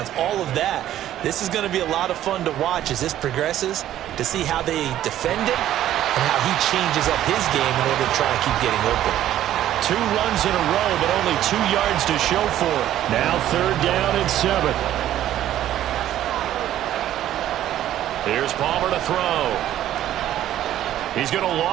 all of that. This is going to be a lot of fun to watch as this progresses, to see how they defend him and how he changes up his game in order to try and keep getting open. 2 runs in a row, but only 2 yards to show for it. Now 3rd down and 7. Here's Palmer to throw. He's going to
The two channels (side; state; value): left; quieter; 12.4 dB